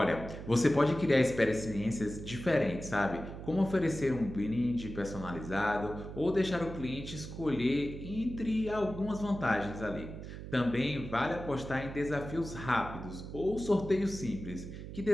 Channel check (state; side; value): noise; right; hum, 10 dB below the sound